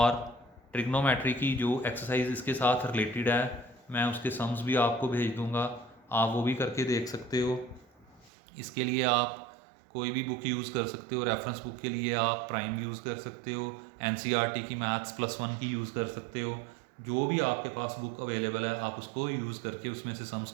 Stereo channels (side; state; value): left; drops out; at 8.3 s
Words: ट्रिग्नोमेट्री की जो एक्सरसाइज इसके साथ रिलेटेड है मैं उसके सम्स भी आपको भेज दूंगा, आप वो भी करके देख सकते हो। इसके लिए आप कोई भी बुक यूज़ कर सकते हो। रेफरेंस बुक के लिए आप प्राइम यूज़ कर सकते हो, एनसीईआरटी की मैथ्स +1 की यूज़ कर सकते हो। जो भी आपके पास बुक अवेलेबल है आप उसको यूज़ करके उसमें से सम्स